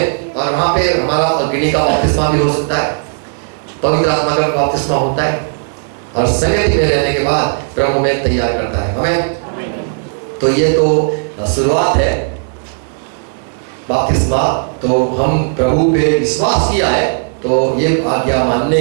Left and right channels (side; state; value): left; silent; 61 dB below the other